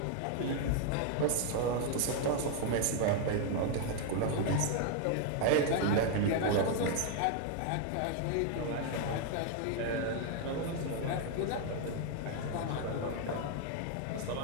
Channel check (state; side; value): different; both; correlation 0.01